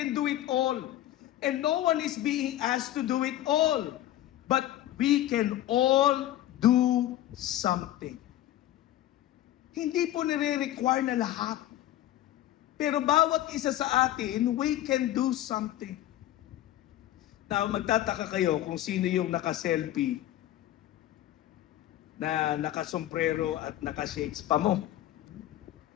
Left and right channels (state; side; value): quieter; right; 13.8 dB